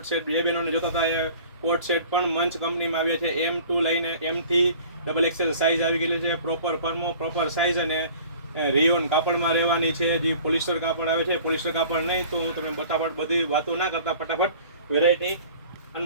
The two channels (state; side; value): inverted; both; correlation -0.47